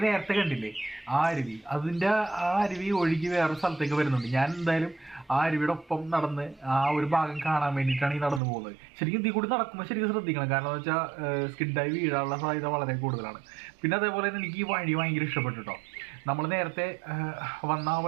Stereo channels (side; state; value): left; drops out; at 8.4 s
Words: നേരത്തെ കണ്ടില്ലേ ആ അരുവി, അതിന്റെ ആ അരുവി ഒഴുകി വേറെ സ്ഥലത്തേക്ക് വരുന്നുണ്ട്. ഞാൻ എന്തായാലും ആ അരുവിയുടെ ഒപ്പം നടന്ന് ആ ഒരു ഭാഗം കാണാൻ വേണ്ടിയിട്ടാണ് ഈ നടന്നു പോകുന്നത്. ശരിക്കും ഇതിൽ കൂടി നടക്കുമ്പോൾ ശരിക്കും ശ്രദ്ധിക്കണം, കാരണം എന്ന് വെച്ചാൽ സ്കിഡായി വീഴാനുള്ള സാധ്യത വളരെ കൂടുതലാണ്. പിന്നെ അതേപോലെ തന്നെ എനിക്ക് ഈ വഴി ഭയങ്കര ഇഷ്ടപ്പെട്ടു കേട്ടോ. നമ്മൾ നേരത്തെ വന്ന ആ